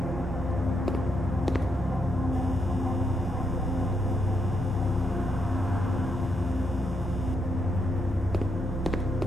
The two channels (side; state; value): both; normal; correlation 0.79